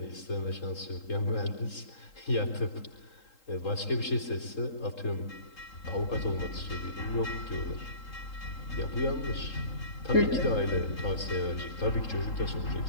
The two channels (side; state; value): right; late; 3.8 ms